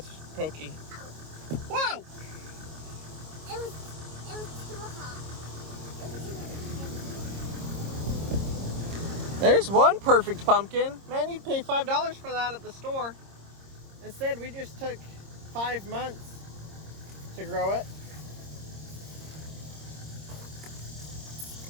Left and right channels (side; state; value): left; late; 26 ms